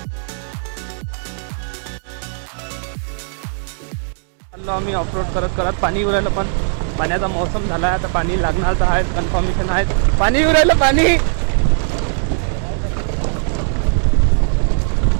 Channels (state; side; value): silent; left; digital silence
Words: आम्ही ऑफरोड करत करत पाणी येऊ राहिलं. पण पाण्याचा मौसम झाला आहे, आता पाणी लागणार तर आहे, कन्फर्मेशन आहे. पाणी येऊ राहिलं पाणी.